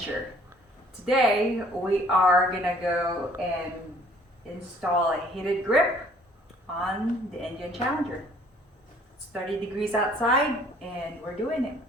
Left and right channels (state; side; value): normal; both; correlation 0.58